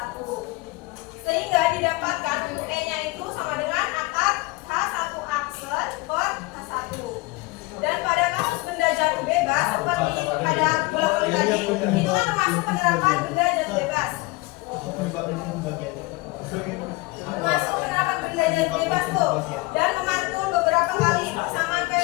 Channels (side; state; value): right; quieter; 23.0 dB